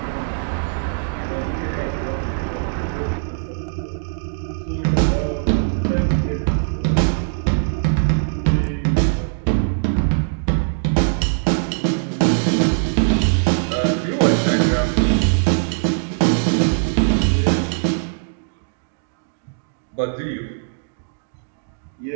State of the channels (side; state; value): left; silent; digital silence